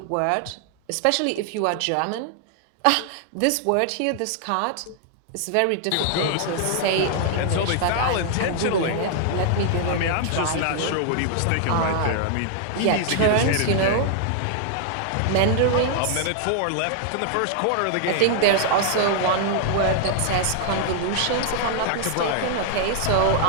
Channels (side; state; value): both; different; correlation 0.00